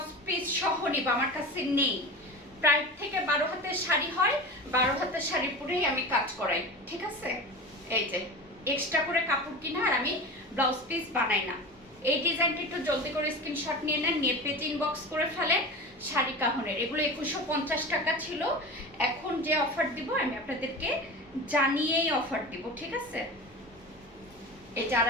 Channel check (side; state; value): both; normal; correlation 0.30